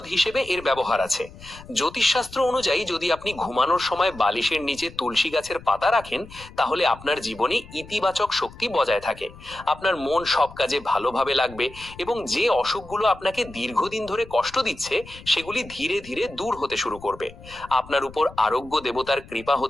হিসেবে এর ব্যবহার আছে। জ্যোতিষশাস্ত্র অনুযায়ী যদি আপনি ঘুমানোর সময় বালিশের নিচে তুলসী গাছের পাতা রাখেন তাহলে আপনার জীবনে ইতিবাচক শক্তি বজায় থাকে। আপনার মন সব কাজে ভালোভাবে লাগবে এবং যে অসুখগুলো আপনাকে দীর্ঘদিন ধরে কষ্ট দিচ্ছে সেগুলি ধীরে ধীরে দূর হতে শুরু করবে। আপনার উপর আরোগ্য দেবতার কৃপা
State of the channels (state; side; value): noise; left; rumble, 18 dB below the sound